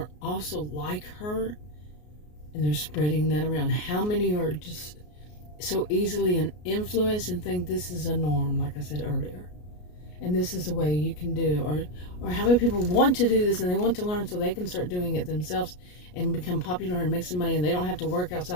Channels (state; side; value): late; right; 33 ms